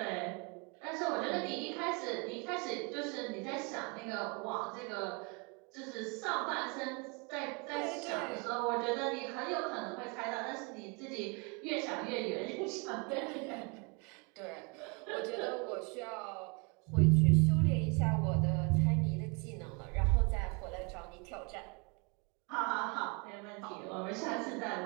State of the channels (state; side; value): quieter; left; 31.9 dB